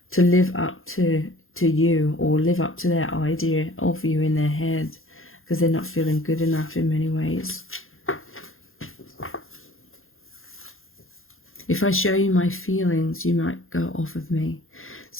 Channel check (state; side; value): late; right; 0.60 ms